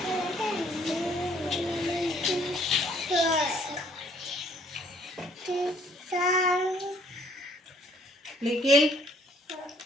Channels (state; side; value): normal; both; correlation 0.62